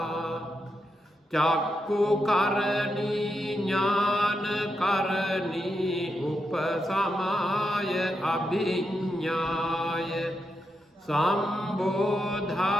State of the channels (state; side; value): normal; both; correlation 0.85